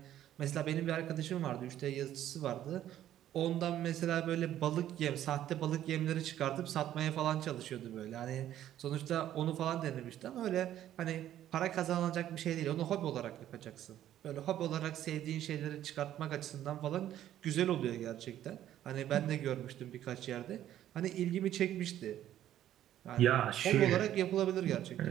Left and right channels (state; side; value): quieter; left; 12.0 dB